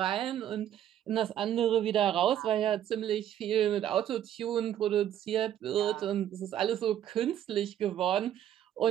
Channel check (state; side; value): quieter; left; 10.9 dB